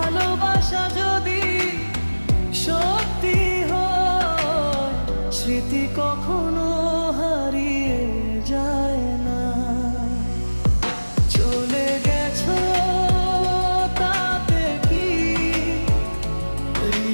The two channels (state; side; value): inverted; both; correlation -1.00